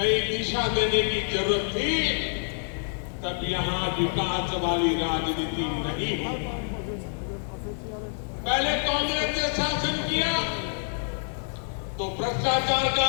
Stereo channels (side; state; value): right; silent; digital silence